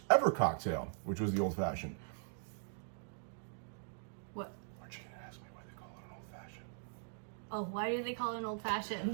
ever cocktail, which was the old fashioned. What? Aren't you going to ask me why they call it an old fashioned? Oh, why do they call it an old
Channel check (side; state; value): left; silent; digital silence